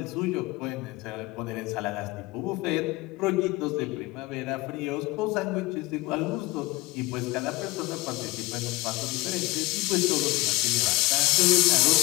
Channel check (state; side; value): quieter; right; 21.7 dB